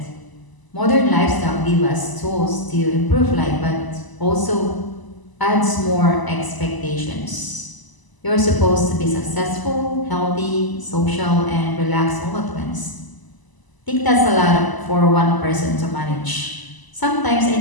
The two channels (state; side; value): late; right; 1.0 ms